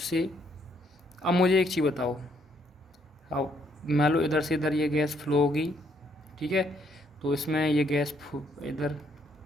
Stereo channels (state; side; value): normal; both; correlation 0.70